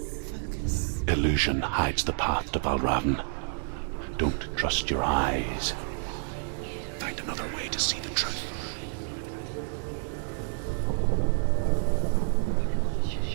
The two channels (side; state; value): left; silent; 59 dB below the other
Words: Illusion hides the path to Valravn. Don't trust your eyes. Find another way to see the truth.